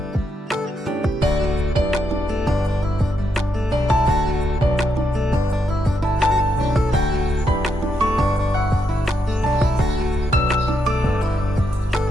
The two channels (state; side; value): normal; both; correlation 0.80